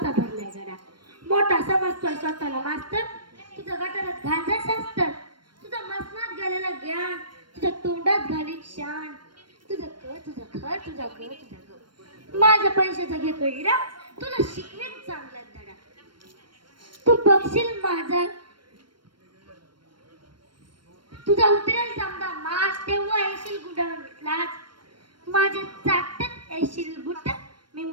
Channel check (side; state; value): left; late; 0.72 ms